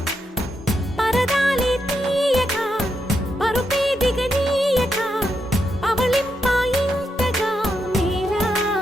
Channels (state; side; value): normal; both; correlation 0.83